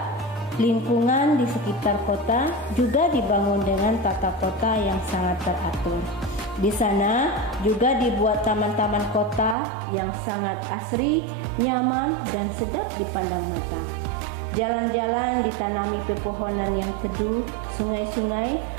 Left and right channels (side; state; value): left; drops out; at 9.6 s